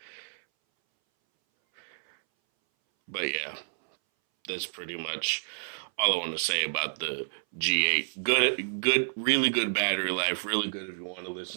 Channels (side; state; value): left; silent; 58 dB below the other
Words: But yeah, that's pretty much all I want to say about the G8. Good, really good battery life. Really good if you want to